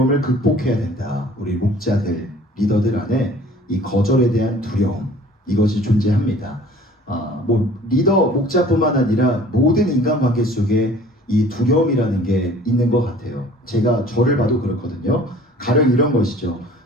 극복해야 된다. 우리 목자들, 리더들 안에 이 거절에 대한 두려움, 이것이 존재합니다. 리더, 목자뿐만 아니라 모든 인간관계 속에 이 두려움이라는 게 있는 것 같아요. 제가 저를 봐도 그렇거든요. 가령 이런 것이죠.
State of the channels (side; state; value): both; normal; correlation 0.49